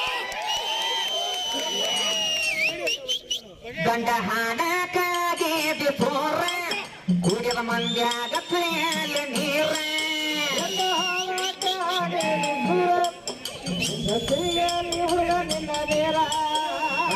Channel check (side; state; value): both; identical; correlation 1.00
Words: ಗಂಡ ಹಾಡಕ್ಕಾಗಿ ಸೋರ ಕುಡಿದ ಮಂದ್ಯಾಗ ನೀರ